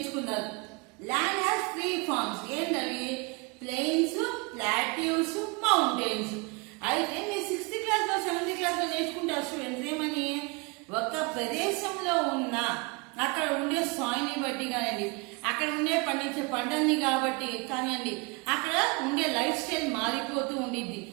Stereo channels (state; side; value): quieter; left; 29.3 dB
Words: Land has 3 forms. ఏంటవి? Plains, plateaus, mountains. అయితే మీరు 6th క్లాస్ లో 7th క్లాస్ లో నేర్చుకుంటారు స్టూడెంట్స్ ఏమని, ఒక ప్రదేశంలో ఉన్న అక్కడ ఉండే సాయిల్ని బట్టి కానివ్వండి, అక్కడ ఉండే పండించే పంటల్ని కాబట్టి కానివ్వండి, అక్కడ ఉండే లైఫ్ స్టైల్ మారిపోతూ ఉండిద్ది.